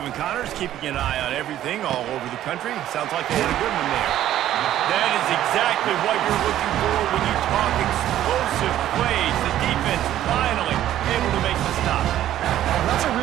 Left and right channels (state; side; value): quieter; left; 12.4 dB